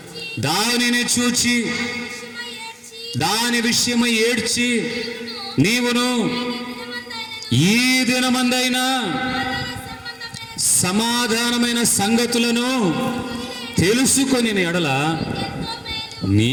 దానిని చూచి దాని విషయమై ఏడ్చి నీవును ఈ దినమందైనా సమాధానమైన సంగతులను తెలుసుకొని ఎడల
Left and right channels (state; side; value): identical; both; correlation 1.00